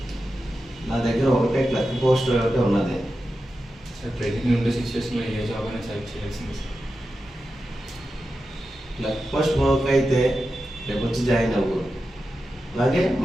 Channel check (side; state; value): both; normal; correlation 0.91